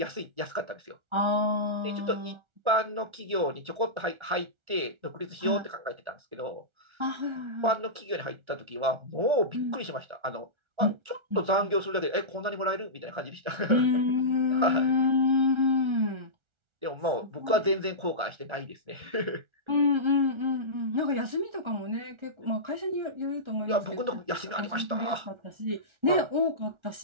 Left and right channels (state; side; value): late; left; 1.4 ms